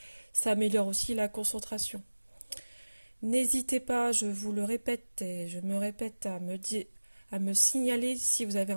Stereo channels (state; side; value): inverted; both; correlation -1.00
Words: Ça améliore aussi la concentration. N'hésitez pas, je vous le répète et je me répète, à me signaler si vous avez